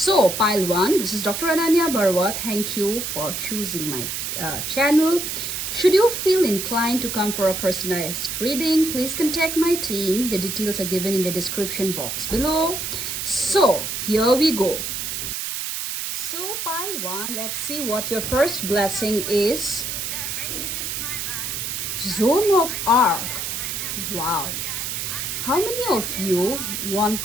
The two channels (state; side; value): noise; right; hiss, 3 dB below the sound